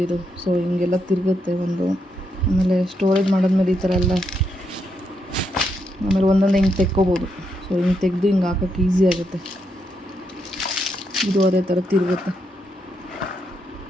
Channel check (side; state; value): both; normal; correlation 0.80